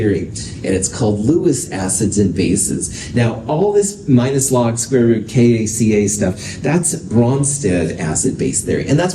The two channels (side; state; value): both; identical; correlation 1.00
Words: and it's called Lewis acids and bases. Now, all this minus log square root KACA stuff, that's Bronsted acid-base theory, and